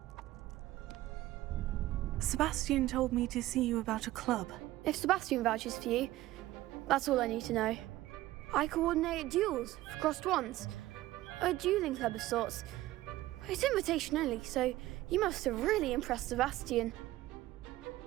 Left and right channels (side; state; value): left; quieter; 16.2 dB